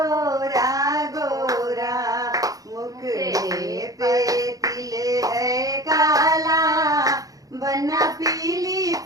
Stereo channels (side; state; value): left; late; 0.17 ms